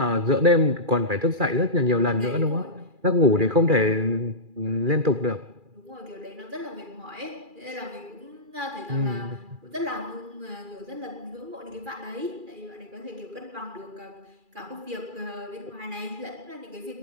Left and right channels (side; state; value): left; late; 2.4 ms